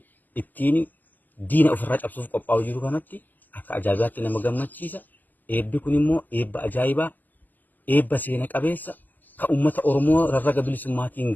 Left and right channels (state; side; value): late; right; 0.085 ms